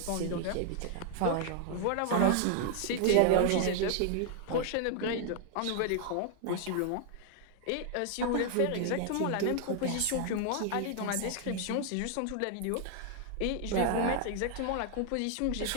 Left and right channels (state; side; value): different; both; correlation 0.00